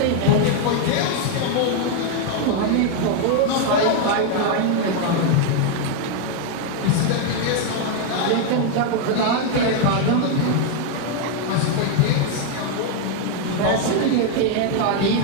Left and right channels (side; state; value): both; different; correlation 0.00